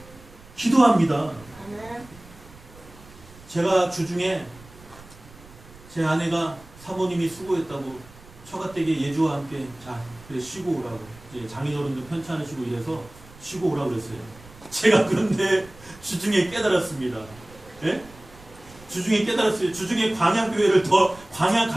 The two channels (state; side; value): noise; right; rumble, 22 dB below the sound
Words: 기도합니다. 아멘. 제가 주중에 제 아내가 사모님이 수고했다고 처가댁에 예주와 함께 자 그래 쉬고 오라고, 이제 장인어른도 편치 않으시고 이래서 쉬고 오라고 그랬어요. 제가 그런데 주중에 깨달았습니다. 예? 주중에 깨달았어요. 주중에 광야교회를 더, 광야